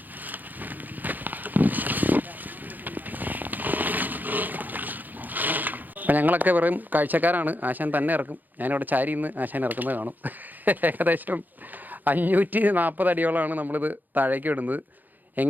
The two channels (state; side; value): late; left; 0.085 ms